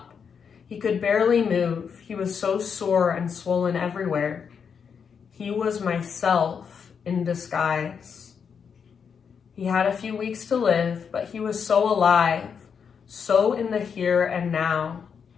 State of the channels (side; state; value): right; quieter; 6.7 dB